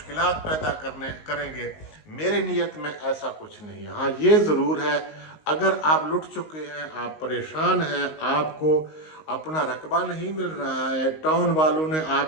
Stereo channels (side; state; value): right; late; 19 ms